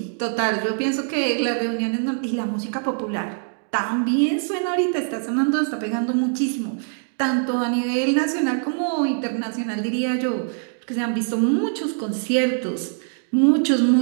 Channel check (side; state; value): left; silent; 63 dB below the other